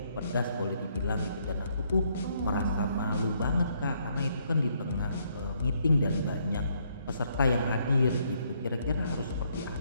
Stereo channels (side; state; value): both; inverted; correlation -0.71